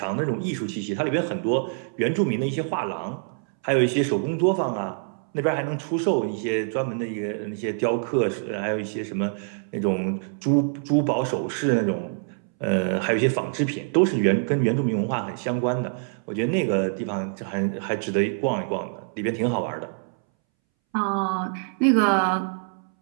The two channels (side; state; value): left; silent; 62 dB below the other